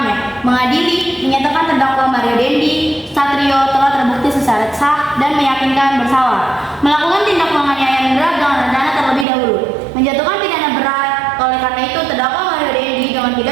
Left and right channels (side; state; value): left; drops out; at 9.2 s